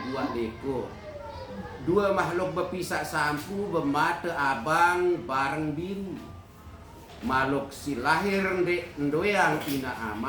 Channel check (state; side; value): identical; both; correlation 1.00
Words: buat leko. Dua makhluk berpisah sampu bermata abang bareng biru. Makhluk si lahir ndoyang ina